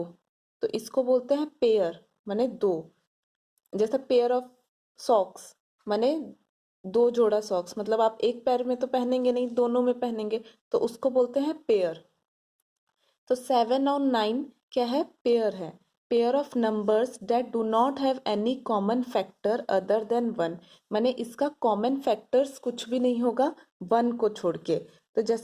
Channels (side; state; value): both; identical; correlation 1.00